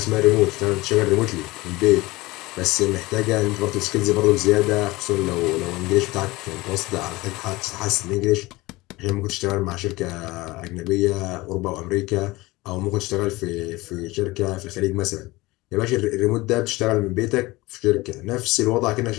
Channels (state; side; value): quieter; right; 20.8 dB